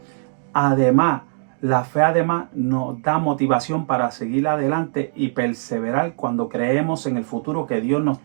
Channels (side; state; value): left; silent; digital silence